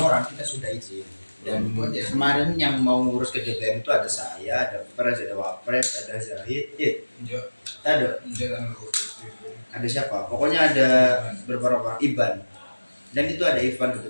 kita sudah izin. Dan kemarin yang mau ngurus ke DPM itu ada saya, ada Pres, ada Wapres, ada Zahid, ada siapa? Pokoknya ada beberapa orang, Iban. Dan itu ada Ivan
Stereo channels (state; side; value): inverted; both; correlation -1.00